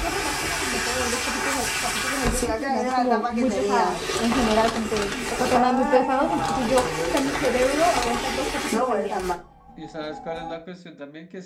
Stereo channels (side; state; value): both; identical; correlation 1.00